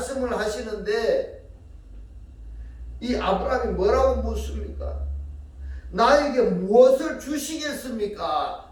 하시는데 이 아브라함이 뭐라고 묻습니까? 나에게 무엇을 주시겠습니까?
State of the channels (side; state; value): both; identical; correlation 1.00